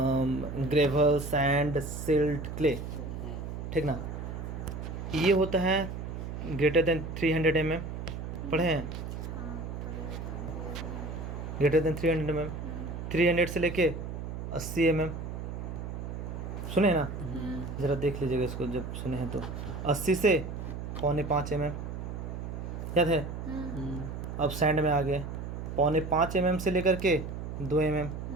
ग्रेवल, सैंड, सिल्ट, क्ले, ठीक ना। ये होता है ग्रेटर देन 300 mm, पढ़े हैं, ग्रेटर देन 300 mm, 300 से लेके 80 mm, सुने ना, ज़रा देख लीजिएगा इसको जब सुने हैं तो। 80 से 4.25 mm याद है। अब सैंड में आ गए, 4.25 mm से लेकर के 2 mm,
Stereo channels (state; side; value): noise; right; hum, 6 dB below the sound